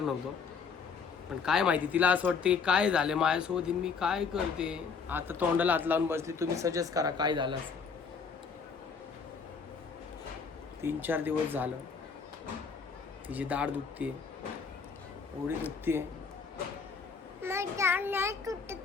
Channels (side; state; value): right; quieter; 5.6 dB